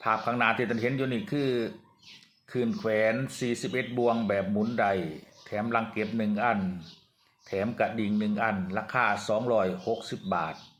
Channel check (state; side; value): identical; both; correlation 1.00